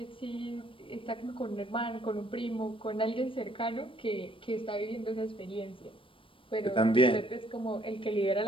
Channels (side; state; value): right; late; 0.25 ms